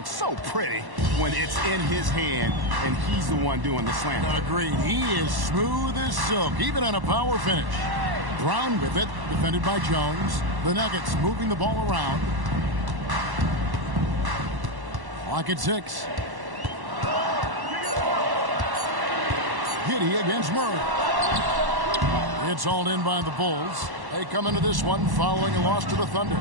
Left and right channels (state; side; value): late; left; 1.1 ms